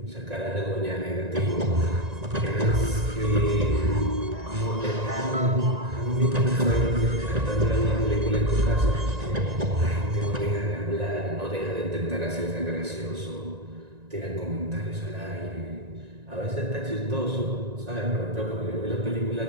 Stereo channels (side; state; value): left; late; 1.9 ms